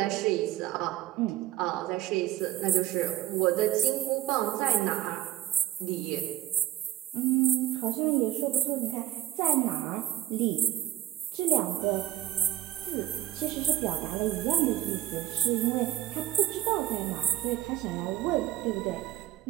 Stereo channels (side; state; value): left; quieter; 13.9 dB